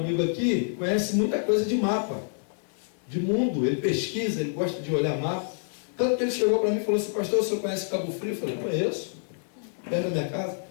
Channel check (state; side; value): silent; right; digital silence